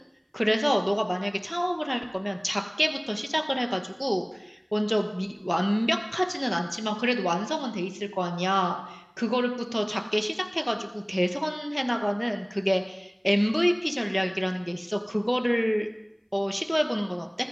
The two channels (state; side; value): identical; both; correlation 1.00